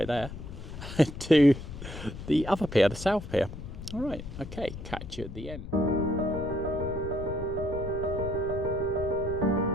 there, to the other pier, the south pier. All right, okay, catch you at the end.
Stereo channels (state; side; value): noise; left; rumble, 10 dB below the sound